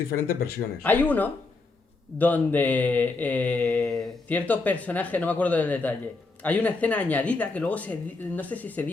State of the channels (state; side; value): quieter; right; 3.7 dB